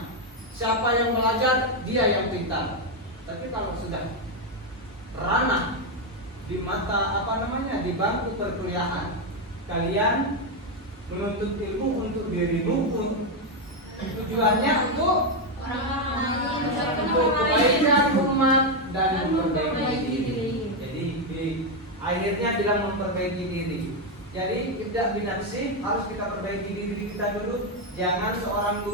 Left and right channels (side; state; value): both; normal; correlation 0.04